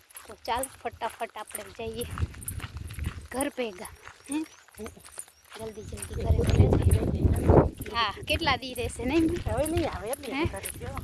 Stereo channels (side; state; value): both; identical; correlation 1.00